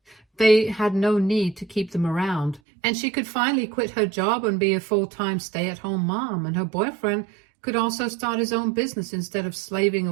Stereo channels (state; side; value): drops out; left; at 2.6 s